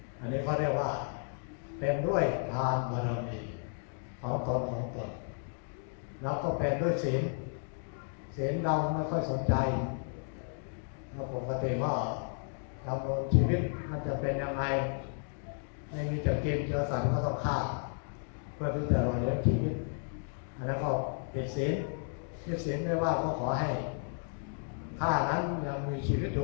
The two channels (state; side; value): silent; right; 56 dB below the other